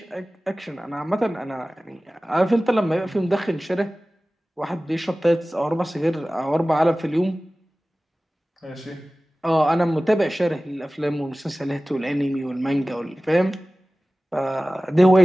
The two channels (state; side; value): normal; both; correlation 0.97